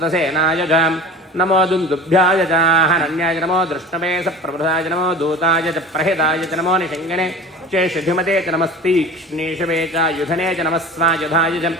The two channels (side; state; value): both; normal; correlation 0.38